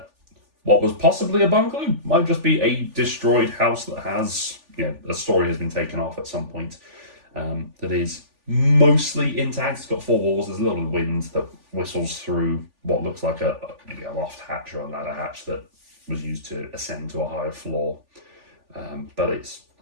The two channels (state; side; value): late; left; 3.4 ms